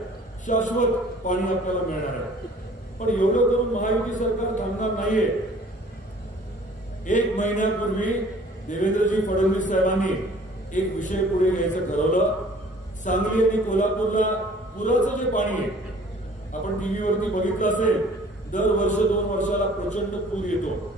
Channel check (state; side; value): normal; both; correlation 0.52